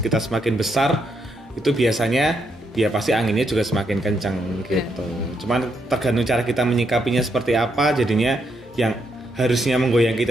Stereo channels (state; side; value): normal; both; correlation 0.78